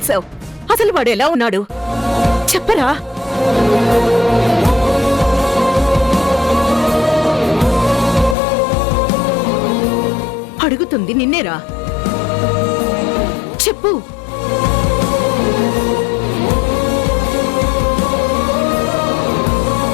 అసలు వాడు ఎలా ఉన్నాడు చెప్పరా? అడుగుతుంది నిన్నేరా, చెప్పు.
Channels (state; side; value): drops out; right; at 8.3 s